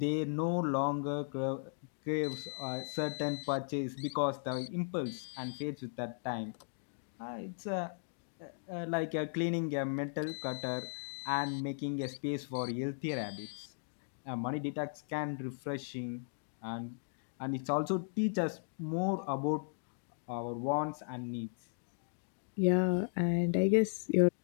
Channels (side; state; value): right; silent; digital silence